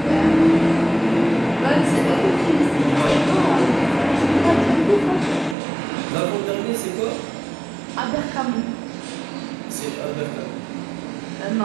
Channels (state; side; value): drops out; left; at 5.6 s